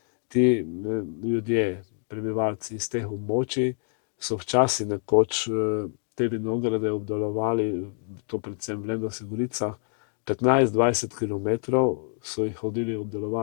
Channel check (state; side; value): silent; right; 60 dB below the other